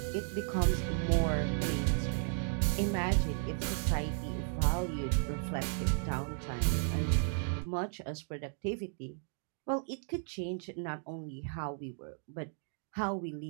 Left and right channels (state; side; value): silent; left; 55 dB below the other